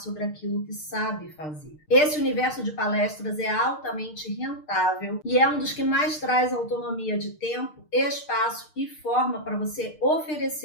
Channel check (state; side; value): late; right; 6.6 ms